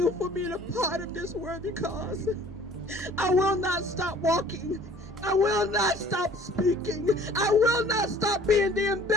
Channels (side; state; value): both; normal; correlation 0.52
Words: for being a part of this worthy cause. I will not stop walking. I will not stop speaking. I will not stop being the